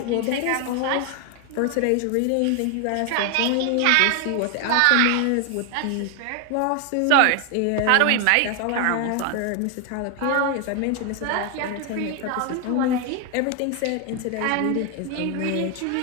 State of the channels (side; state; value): both; different; correlation 0.01